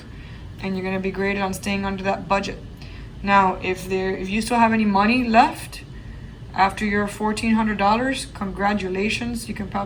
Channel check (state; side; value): identical; both; correlation 1.00